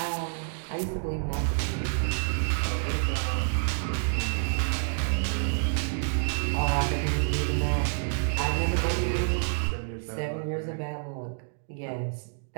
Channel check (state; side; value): silent; left; digital silence